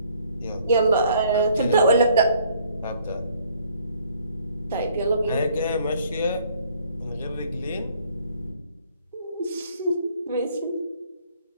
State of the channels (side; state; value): both; inverted; correlation -0.61